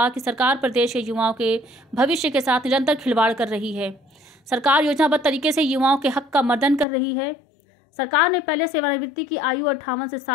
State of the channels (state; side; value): drops out; right; at 6.9 s